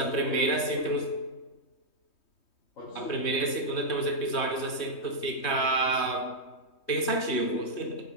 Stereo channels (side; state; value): right; late; 3.2 ms